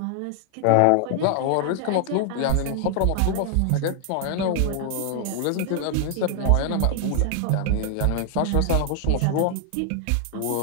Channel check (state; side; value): different; both; correlation 0.00